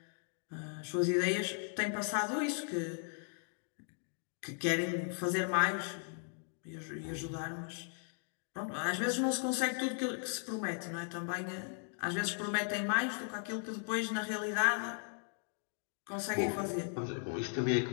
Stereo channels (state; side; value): silent; right; 53 dB below the other